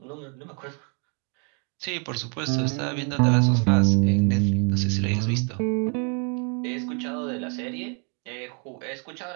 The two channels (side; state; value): left; quieter; 37.7 dB